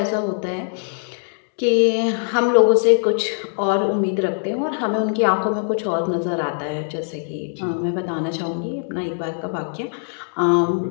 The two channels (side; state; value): right; silent; digital silence